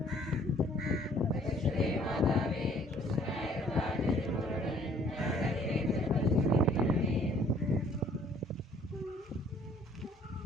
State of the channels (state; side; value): normal; both; correlation 0.58